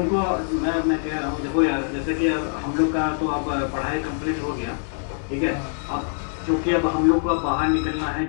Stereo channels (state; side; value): silent; right; 62 dB below the other